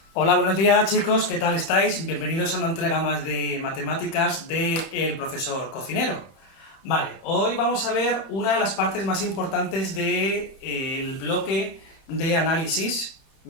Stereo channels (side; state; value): right; late; 30 ms